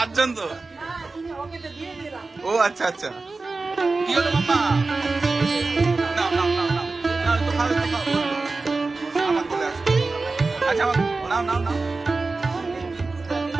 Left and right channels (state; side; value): quieter; left; 3.7 dB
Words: তো। ও আচ্ছা আচ্ছা, কি হলো মাম্মা? নাও নাও নাও নাও নাও, একটু খাও একটু খাও। আমার কোলে আসো। আচ্ছা আমার নাও নাও নাও।